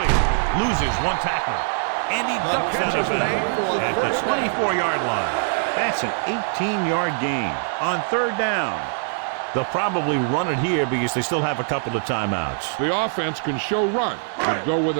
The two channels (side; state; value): left; silent; digital silence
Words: Loses one tackler. And he ducks out of bounds at the 24-yard line. That's an 18-yard gain on 3rd down. They'll probably run it here because they still have a couple of timeouts. The offense can show run, but go with